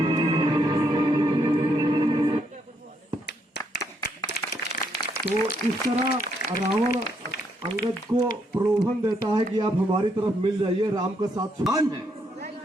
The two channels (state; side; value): normal; both; correlation 0.75